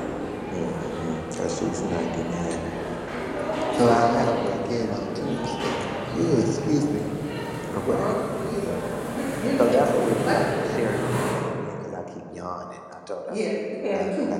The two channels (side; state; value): both; identical; correlation 1.00